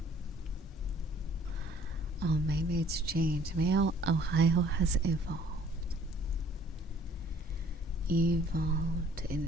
Oh, maybe it's changed. Maybe Ohio has evolved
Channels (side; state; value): both; normal; correlation 0.56